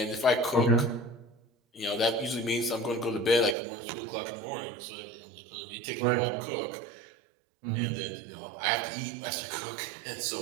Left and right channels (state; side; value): drops out; left; at 3.6 s